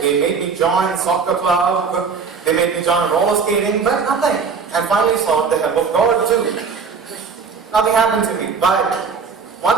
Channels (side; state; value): left; quieter; 5.5 dB